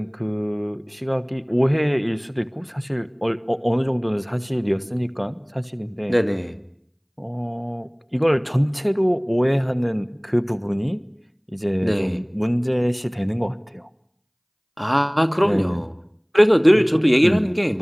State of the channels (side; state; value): both; identical; correlation 1.00